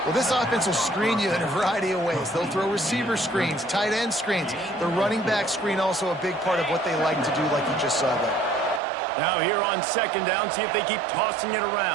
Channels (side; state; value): left; drops out; at 8.8 s